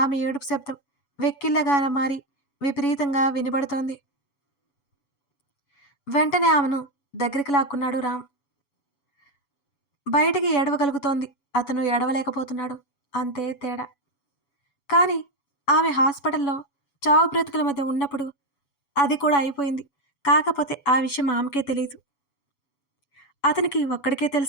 ఏడుపు శబ్దం వెక్కిళ్ళగా మారి విపరీతంగా వినబడుతోంది. వెంటనే ఆమెను దగ్గరికి లాక్కున్నాడు రామ్. బయటికి ఏడవగలుగుతోంది, అతను ఏడవలేకపోతున్నాడు. అంతే తేడా. కానీ ఆమె హాస్పిటల్లో చావు బ్రతుకుల మధ్య ఉన్నప్పుడు అది కూడా అయిపోయింది. కాకపోతే ఆ విషయం ఆమెకే తెలియదు. అతనికి ఒక్కడికే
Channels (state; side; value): late; right; 7.1 ms